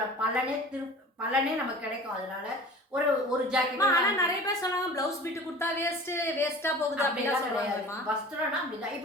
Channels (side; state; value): both; normal; correlation 0.41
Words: பலனே நமக்கு கிடைக்கும். அதனால ஒரு ஜாக்கெட். ஆனா நிறைய பேர் சொன்னாங்க பிளவுஸ் பிட்டு கொடுத்தா வேஸ்டா போகுது அப்படிலாம் சொல்லுவாங்க. வஸ்திரம்னா அப்படிதான்.